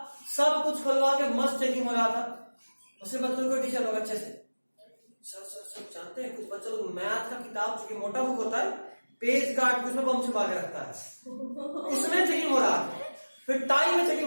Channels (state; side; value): inverted; both; correlation -1.00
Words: सब कुछ खुलवा के मस्त चेकिंग हो रहा था। उसके बाद को टीचर लोग अच्छे से सर जानते हैं, कुछ बच्चे लोग मैथ का किताब चूंकि मोटा बुक होता है, पेज काट के उसमें बम छुपा के रखता है, उसमें चेकिंग हो रहा था। फिर टाई में